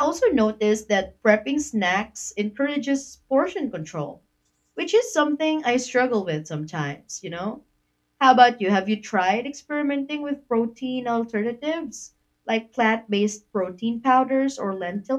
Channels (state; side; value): identical; both; correlation 1.00